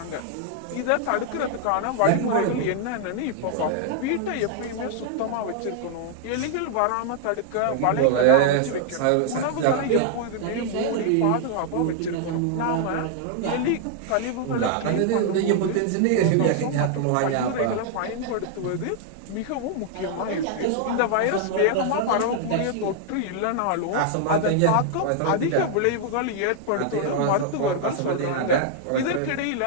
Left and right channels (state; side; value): different; both; correlation -0.01